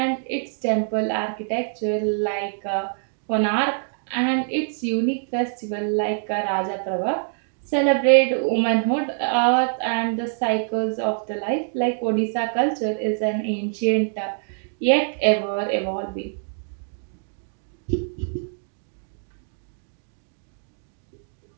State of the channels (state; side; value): silent; left; digital silence